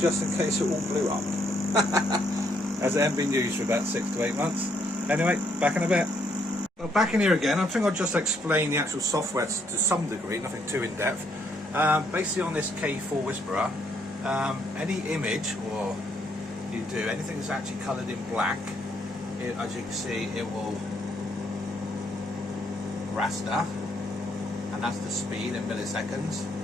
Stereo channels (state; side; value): normal; both; correlation 0.72